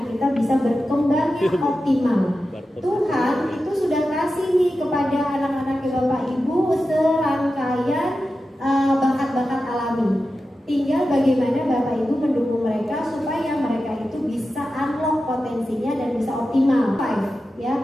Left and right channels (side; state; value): both; normal; correlation 0.92